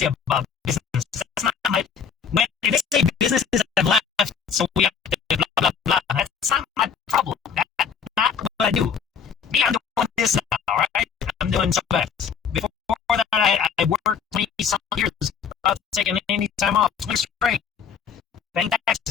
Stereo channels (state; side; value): quieter; right; 7.0 dB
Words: about businesses. That's not my. When they say businesses have left, so we have to blah blah blah. That's not my problem. That's not what I do. Me, I'm doing this now, right? I'm doing SubX. Before that, I worked 20-some years without taking any time off. 20 straight. Paying